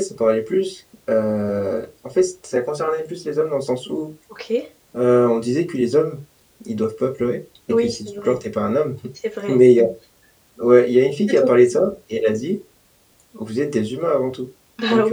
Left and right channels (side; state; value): both; identical; correlation 1.00